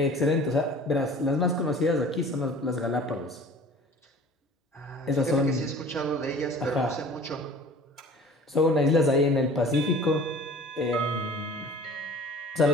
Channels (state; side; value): normal; both; correlation 0.45